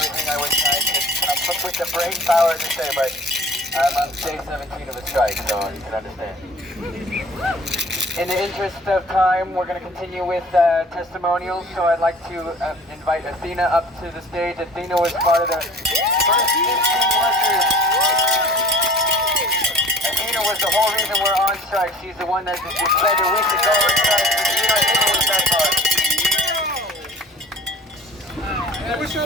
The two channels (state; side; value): normal; both; correlation 0.46